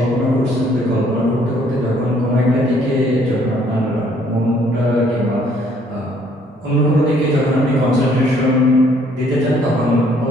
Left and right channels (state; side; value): normal; both; correlation 0.63